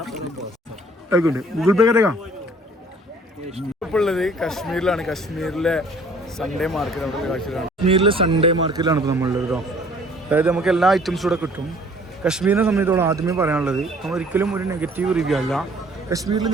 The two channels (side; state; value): both; normal; correlation 0.56